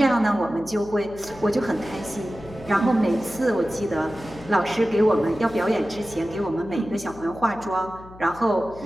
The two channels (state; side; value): noise; left; hum, 19 dB below the sound